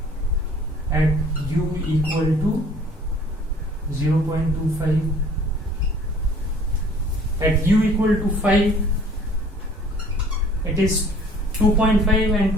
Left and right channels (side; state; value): both; normal; correlation 0.53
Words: at u equal to 0.25. At u equal to 5, it is 2.5 and